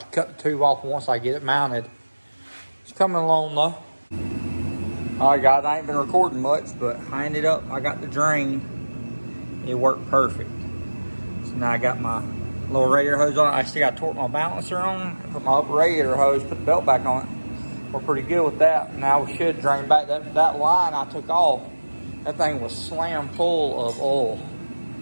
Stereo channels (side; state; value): both; inverted; correlation -1.00